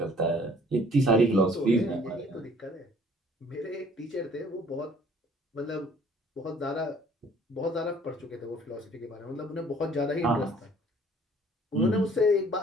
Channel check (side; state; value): both; normal; correlation 0.56